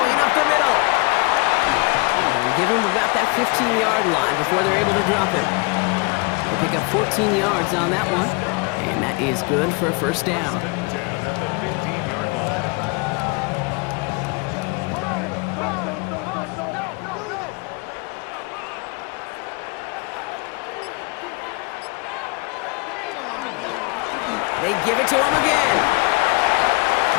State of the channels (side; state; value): right; quieter; 29.8 dB